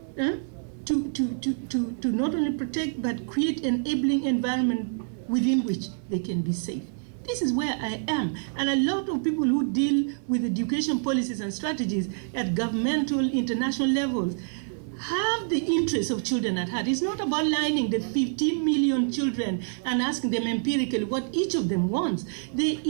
to not only protect but create an enabling environment within which they can be safe. This is where I am. And a lot of people who deal with education policies and strategies at governmental, international levels have the interests of children at heart. It's not about lining the 15 million children and asking them empirically what each of them wants. There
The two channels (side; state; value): left; silent; 60 dB below the other